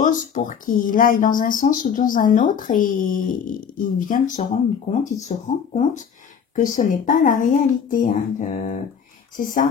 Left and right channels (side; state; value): right; quieter; 7.2 dB